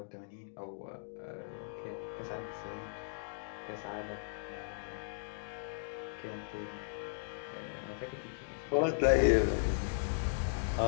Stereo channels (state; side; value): silent; right; digital silence